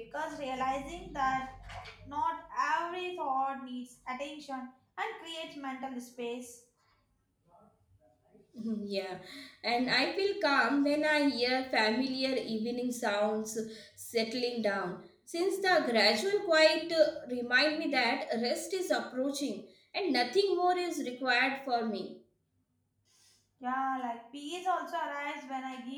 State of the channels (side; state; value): both; identical; correlation 1.00